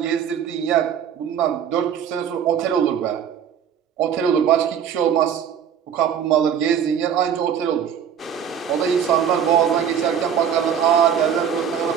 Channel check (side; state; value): left; quieter; 8.4 dB